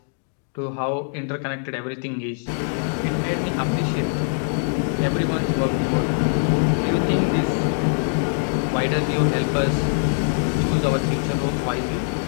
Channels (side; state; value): right; silent; digital silence